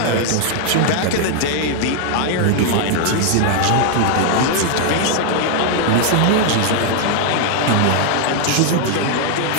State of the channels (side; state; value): both; different; correlation 0.00